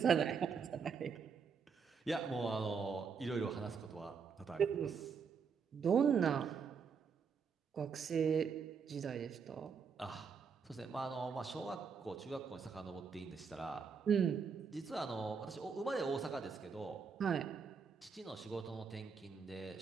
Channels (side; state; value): left; quieter; 5.9 dB